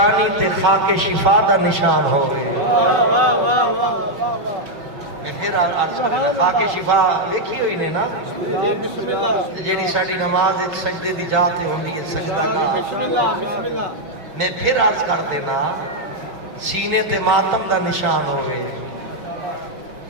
تے خاک شفا دا نشان ہوئے۔ میں پھر عرض کرنا، خاک شفا دیکھی ہوئی نے نا، جیڑی ساڑی نماز ایک سجدے دی جاتے ہوندی ہے، سجدہ کا۔ میں پھر عرض کر دینا، سینے تے ماتم دا نشان ہوئے،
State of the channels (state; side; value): late; left; 5.3 ms